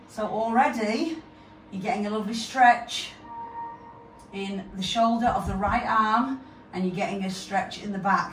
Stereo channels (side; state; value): both; identical; correlation 1.00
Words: So already you're getting a lovely stretch in the shoulder of the right arm, and you're getting a stretch in the